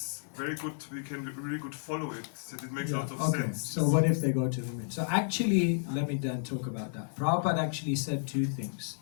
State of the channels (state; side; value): silent; right; 57 dB below the other